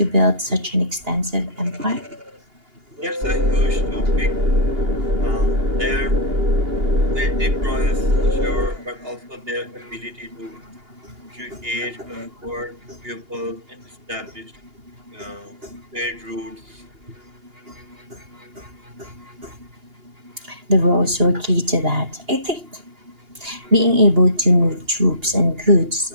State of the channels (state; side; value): late; left; 2.8 ms